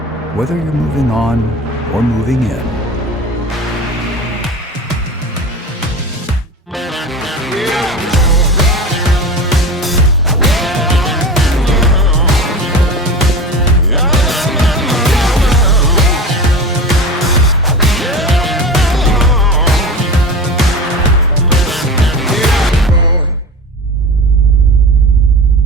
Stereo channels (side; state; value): both; normal; correlation 0.31